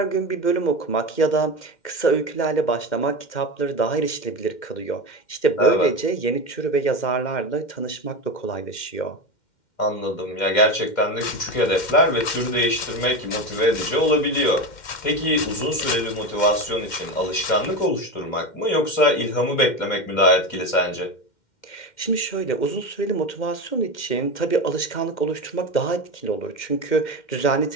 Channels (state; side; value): late; right; 2.1 ms